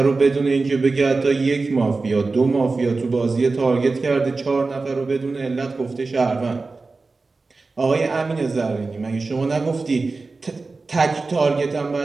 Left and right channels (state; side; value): quieter; left; 3.8 dB